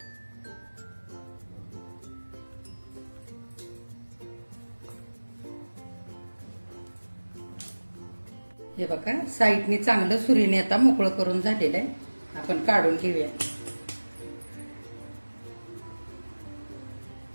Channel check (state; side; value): inverted; both; correlation -1.00